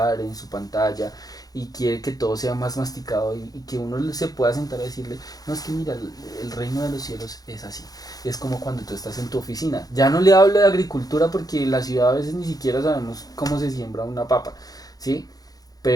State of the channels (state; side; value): late; right; 0.18 ms